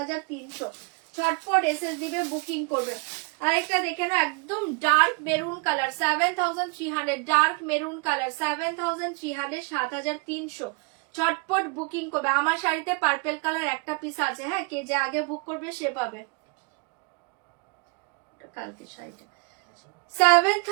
ছটফট এসএস দিবে, বুকিং করবে। আরেকটা দেখে না, একদম dark maroon colour. 7300, dark maroon colour. 7300, 7300। ছটফট বুকিং করবে। আমার শাড়িতে পার্পেল কালার একটা পিস আছে। হ্যাঁ কে যে আগে বুক করবে সে পাবে। কালকে শাড়িটা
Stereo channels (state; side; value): quieter; left; 32.6 dB